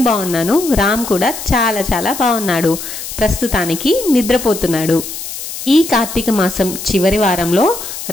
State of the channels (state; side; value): noise; left; hiss, 9 dB below the sound